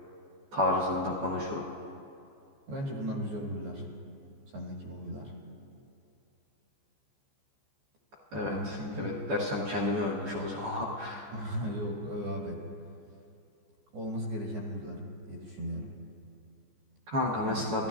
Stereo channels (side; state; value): left; late; 14 ms